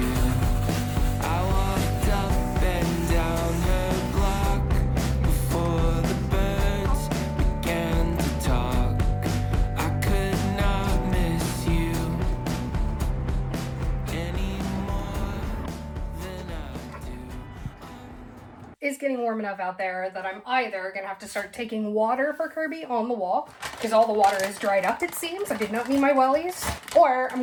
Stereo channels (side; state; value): both; identical; correlation 1.00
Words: It's getting warm enough out there that I'm either gonna have to start taking water for Kirby on the walk because all the water is dried up, it seems. I did not mean my wellies. Or I'm